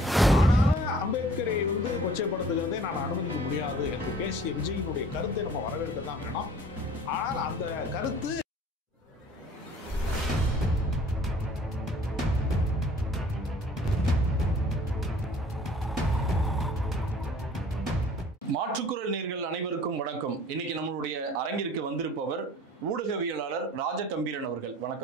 ஆனாலும் அம்பேத்கரை கொச்சைப்படுத்துகிறதை நான் அனுமதிக்க முடியாது என்று பேசிய விஜயினுடைய கருத்தை நம்ம வரவேற்க தான் வேணும். ஆனால் அந்த கருத்து மாற்றுக்குரல் நேர்கள் அனைவருக்கும் வணக்கம். இன்னைக்கு நம்மளுடைய அரங்கிற்கு வந்திருப்பவர் ஊடகவியலாளர் ராஜகம்பீரன் அவர்கள்.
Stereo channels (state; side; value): normal; both; correlation 0.50